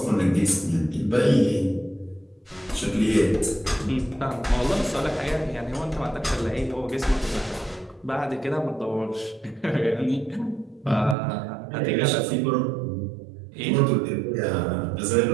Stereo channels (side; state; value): left; drops out; at 11.2 s